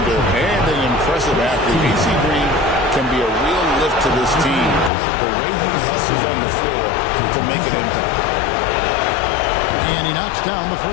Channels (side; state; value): right; drops out; at 4.9 s